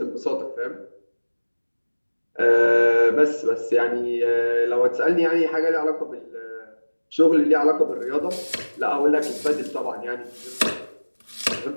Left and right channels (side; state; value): both; inverted; correlation -1.00